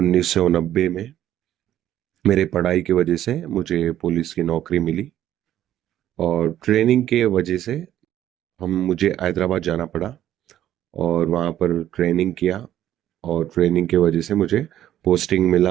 में मेरे पढ़ाई की वजह से मुझे पुलिस की नौकरी मिली। और ट्रेनिंग के वजह से हम मुझे हैदराबाद जाना पड़ा और वहाँ पर ट्रेनिंग किया। और ट्रेनिंग के वजह से मुझे पोस्टिंग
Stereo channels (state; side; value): quieter; left; 12.0 dB